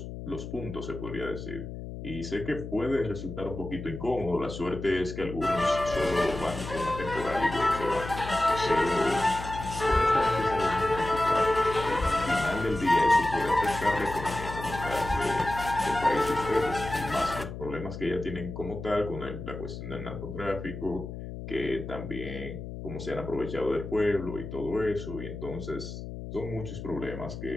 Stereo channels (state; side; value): noise; left; hum, 9 dB below the sound